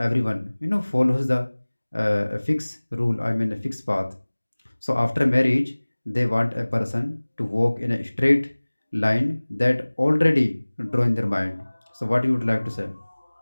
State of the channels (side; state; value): both; inverted; correlation -1.00